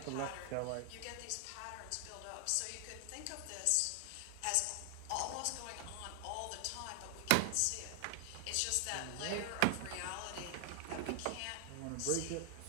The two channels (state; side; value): different; both; correlation 0.00